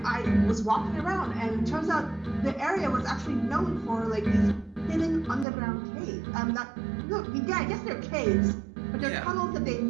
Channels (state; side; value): drops out; left; at 5.5 s